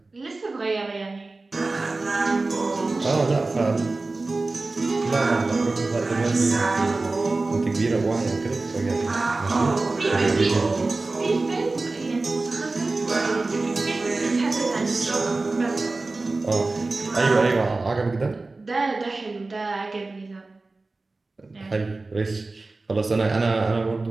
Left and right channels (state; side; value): quieter; left; 3.4 dB